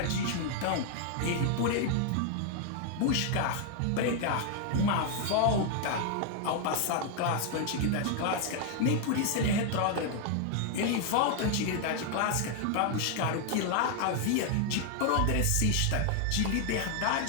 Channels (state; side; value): different; both; correlation 0.00